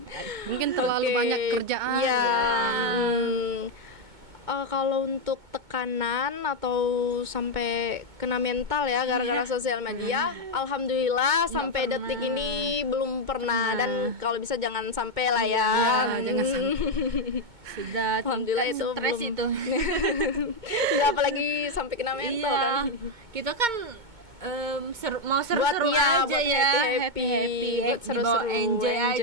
Mungkin terlalu Oke. banyak kerjaan. Iya. gitu. Kalau untuk tekanan atau sampai kena mental ya gara-gara sosial media, alhamdulillah sampai pernah. detik ini belum pernah, dan kalau bisa jangan sampai lah ya. jangan Sudah Alhamdulillah tingkat itu stres belum. itu. Ya apalagi sampai kena mental Iya. kan. Kita kan mau Buat seru-seru ya, aja buat ya, happy-happy, buat seru-seru, enjoy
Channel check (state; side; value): late; left; 2.2 ms